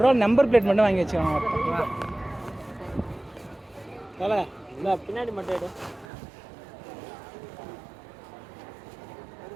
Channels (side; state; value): left; drops out; at 6.1 s